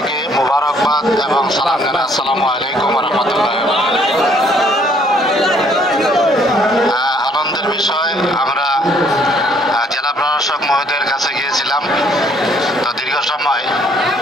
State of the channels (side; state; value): both; normal; correlation 0.64